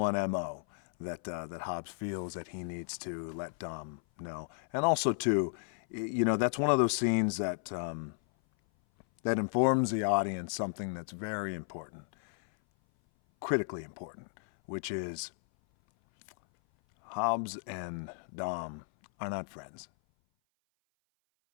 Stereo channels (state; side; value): silent; right; 55 dB below the other